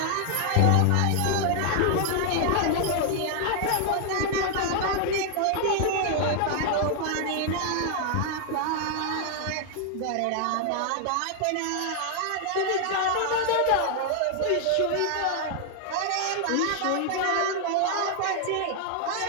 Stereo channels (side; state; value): both; different; correlation 0.00